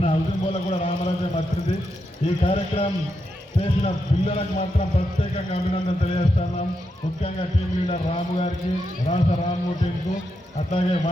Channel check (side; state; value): both; normal; correlation 0.84